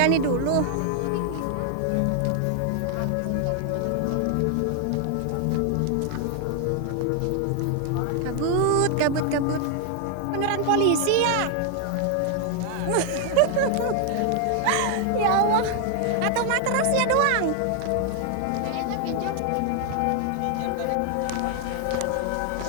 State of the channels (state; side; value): different; both; correlation 0.00